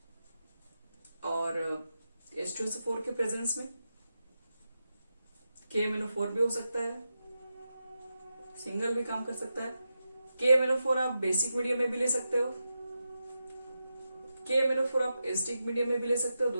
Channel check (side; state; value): both; inverted; correlation -0.89